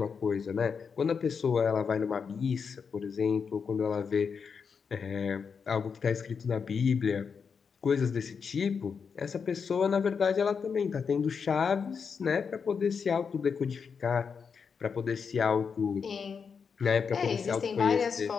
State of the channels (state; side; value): quieter; right; 6.0 dB